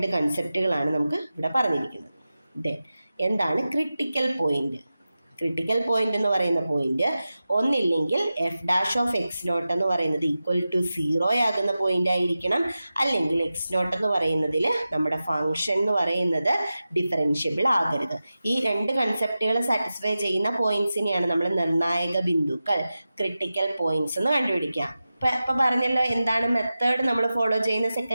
കൺസെപ്റ്റുകളാണ് നമുക്ക് ഇവിടെ പറഞ്ഞിരിക്കുന്നത്. ദെൻ എന്താണ് ക്രിട്ടിക്കൽ പോയിന്റ്? ക്രിട്ടിക്കൽ പോയിന്റ് എന്ന് പറയുന്ന പോയിന്റ് ഒന്നില്ലെങ്കിൽ f'(x0) എന്ന് പറയുന്നത് =0 ആകുന്ന പോയിന്റ് ആയിരിക്കണം, അല്ലെങ്കിൽ x0 എന്ന് പറയുന്നതിൽ നമ്മുടെ ഫംഗ്ഷൻ എന്ന് പറയുന്നത് ഡിഫറൻഷ്യബിൾ ആകരുത്. ഈ 2 കൺസെപ്റ്റുകൾ സാറ്റിസ്ഫൈ ചെയ്യുന്ന പോയിന്റ്സിനെയാണ് നമ്മൾ നിർണായക ബിന്ദുക്കൾ, ക്രിട്ടിക്കൽ പോയിന്റ്സ് എന്ന് കണ്ടുപിടിക്കുക. ഇപ്പം പറഞ്ഞല്ലോ എന്താണ് മെത്തേഡ് നമ്മൾ ഫോളോ ചെയ്യുന്ന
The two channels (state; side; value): inverted; both; correlation -0.93